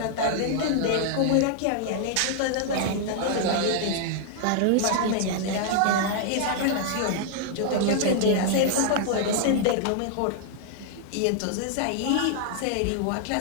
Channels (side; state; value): both; different; correlation -0.01